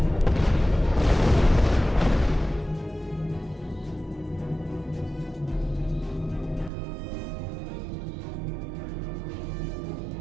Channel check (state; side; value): drops out; left; at 6.7 s